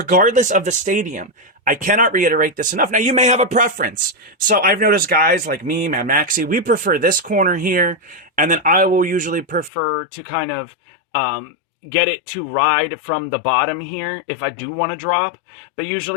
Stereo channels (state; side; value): drops out; right; at 9.7 s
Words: of the stadium, I cannot reiterate this enough. Now, you may have a preference. So I've noticed guys like me, Mad Maxi, we prefer this corner here, and then I will usually prefer to kind of, get it to ride from the bottom here if I do want to drop, but